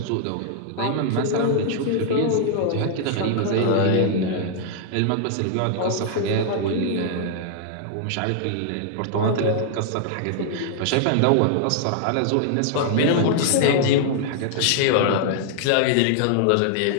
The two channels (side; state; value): both; different; correlation -0.01